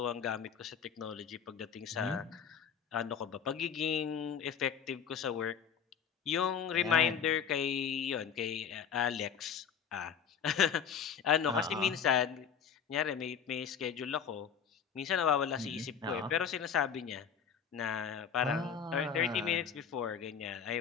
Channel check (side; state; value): right; quieter; 7.4 dB